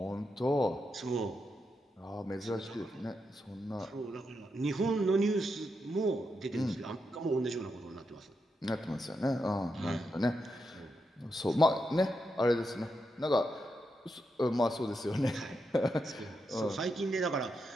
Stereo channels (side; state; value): both; normal; correlation 0.84